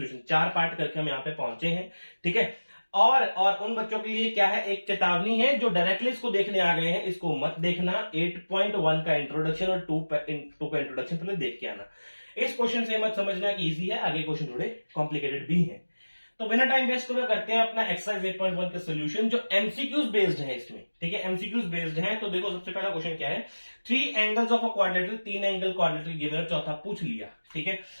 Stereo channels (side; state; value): both; inverted; correlation -1.00